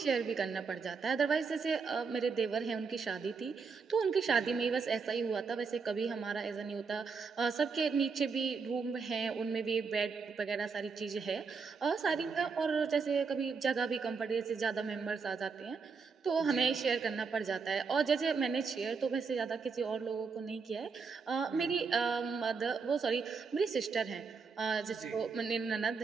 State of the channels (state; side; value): quieter; left; 5.1 dB